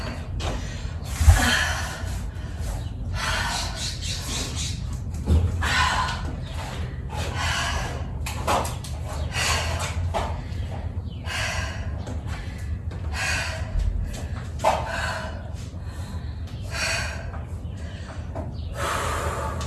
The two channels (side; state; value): both; identical; correlation 1.00